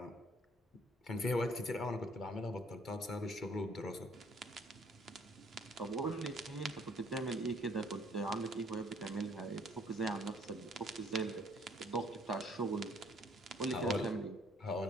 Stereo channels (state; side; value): normal; both; correlation 0.61